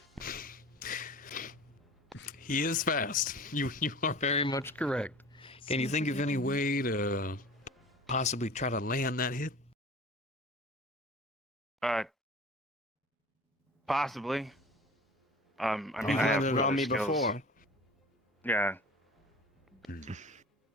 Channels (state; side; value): normal; both; correlation 0.40